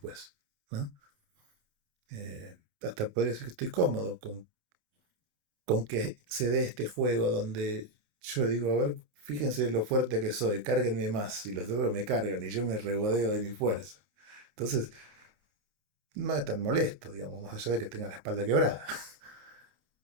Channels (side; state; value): left; late; 28 ms